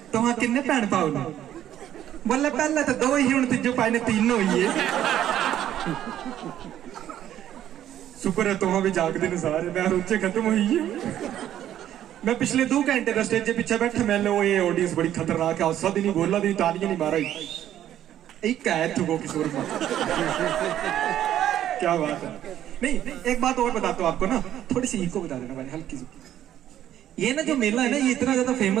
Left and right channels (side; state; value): left; quieter; 11.5 dB